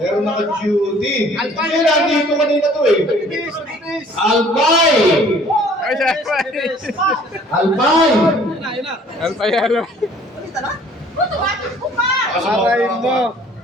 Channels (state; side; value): normal; both; correlation 0.55